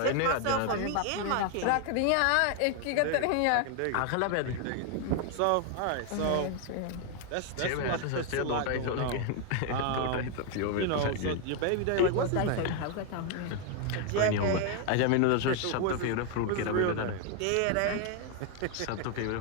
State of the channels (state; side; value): different; both; correlation 0.00